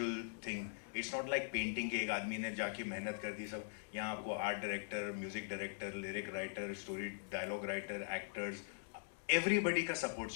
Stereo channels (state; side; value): silent; right; digital silence